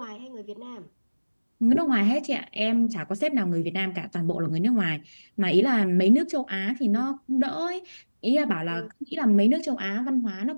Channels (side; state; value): both; inverted; correlation -1.00